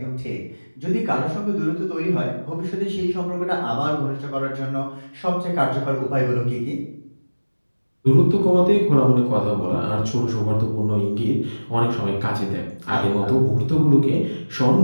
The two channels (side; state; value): both; inverted; correlation -1.00